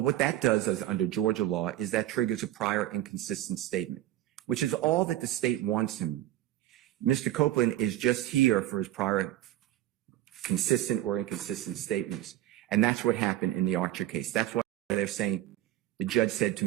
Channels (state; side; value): quieter; left; 14.0 dB